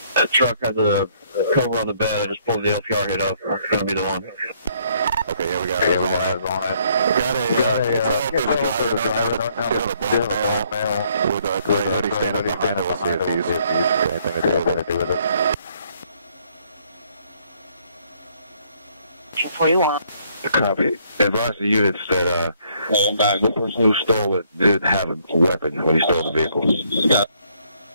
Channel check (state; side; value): inverted; both; correlation -0.67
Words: That truck has a cover on the bed. I just pulled the LPR hit up. It's going to be the one. Okay, here we go. Got a driver with a gray hoodie standing behind us. We'll see if he's anything to do with it. 41. Copy. Advise the units that the person who stole it did have a weapon when he stole the vehicle.